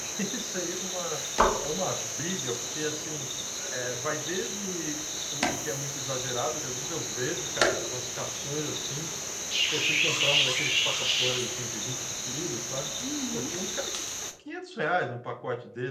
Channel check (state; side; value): identical; both; correlation 1.00